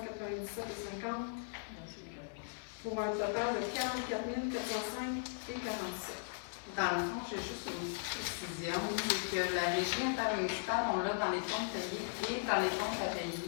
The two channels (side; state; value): right; silent; digital silence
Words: 50. Pour un total de 44 405 et 47. Dans le fond, j'ai juste une précision, c'est que la régie intermunicipale, on l'a dans les comptes payés et dans les comptes à payer.